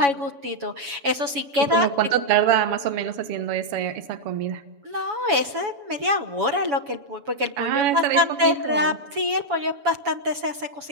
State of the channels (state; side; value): late; left; 7.1 ms